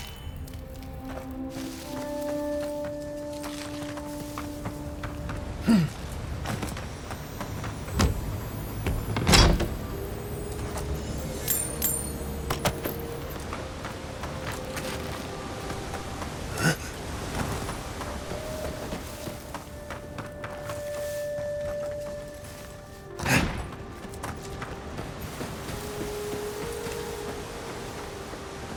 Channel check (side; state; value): both; identical; correlation 1.00